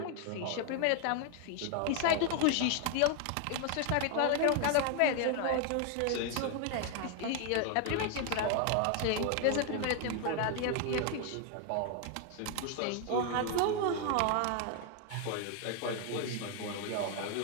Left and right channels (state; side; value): different; both; correlation 0.00